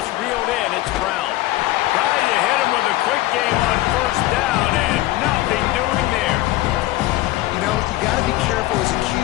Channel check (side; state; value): right; quieter; 17.0 dB